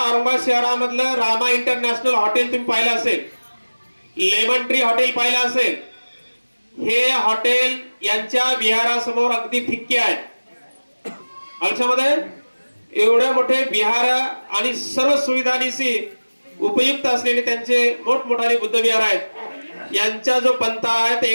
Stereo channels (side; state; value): both; inverted; correlation -1.00